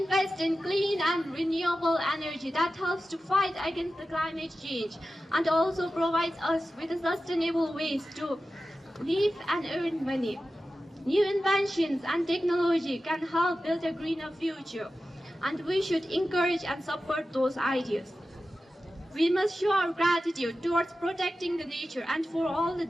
in clean and renewable energy that helps to fight against the climate change and also provides us with sustainable ways to live and earn money. New inventions and technology can help build a greener future, and we should encourage and support those ideas. We must show our gratitude towards protecting the nature and for all the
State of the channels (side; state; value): both; normal; correlation 0.93